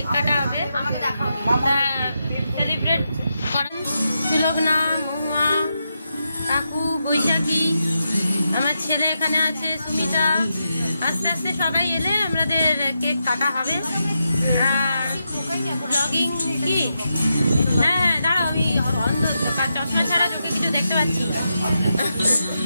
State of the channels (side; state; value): both; inverted; correlation -0.85